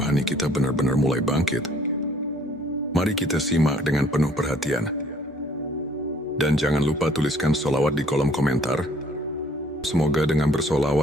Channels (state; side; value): normal; both; correlation 0.59